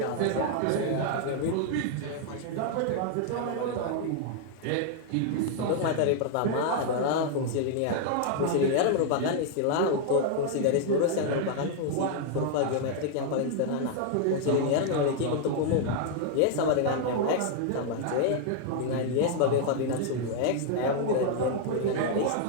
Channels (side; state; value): both; different; correlation 0.00